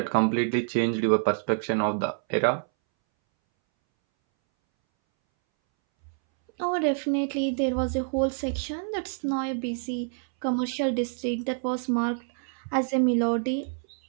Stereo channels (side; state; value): left; silent; 60 dB below the other